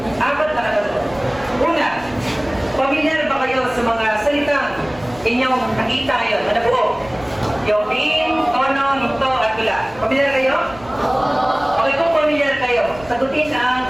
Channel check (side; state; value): right; noise; rumble, 21 dB below the sound